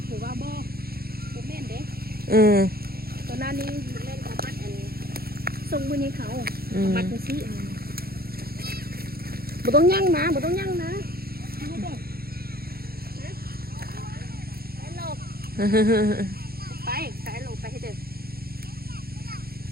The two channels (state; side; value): late; left; 0.44 ms